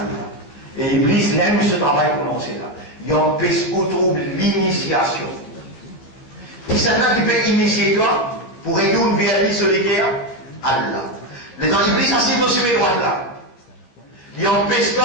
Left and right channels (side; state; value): right; late; 15 ms